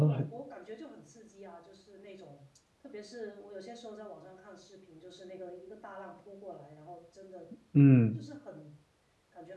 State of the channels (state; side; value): identical; both; correlation 1.00